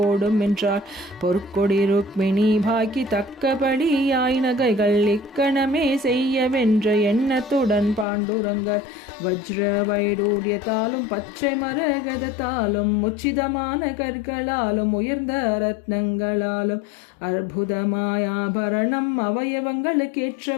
என்றார், பொற்கொடி ருக்மிணி பாக்கி தக்கபடியாய் நகைகள் இக்கணமே செய்யவென்ற எண்ணத்துடன் பாண்டுரங்கர் வஜ்ர வைடூரியத்தாலும் பச்சை மரகதத்தாலும் உச்சிதமான கற்களாலும் உயர்ந்த ரத்னங்களாலும் அற்புதமாய் ஆபரணம்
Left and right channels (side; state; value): right; drops out; at 8.1 s